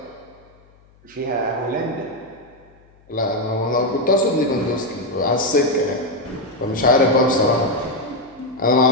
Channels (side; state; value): left; noise; hum, 30 dB below the sound